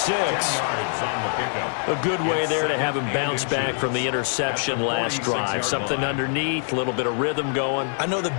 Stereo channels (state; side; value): silent; right; 63 dB below the other